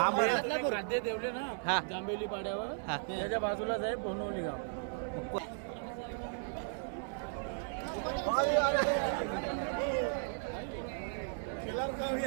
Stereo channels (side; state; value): left; silent; 54 dB below the other